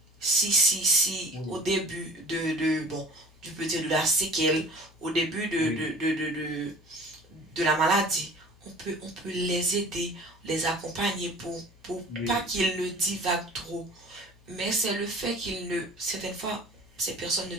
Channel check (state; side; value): normal; both; correlation 0.45